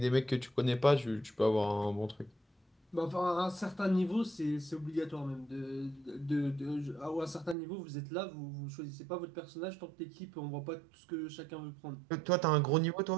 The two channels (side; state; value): left; drops out; at 7.6 s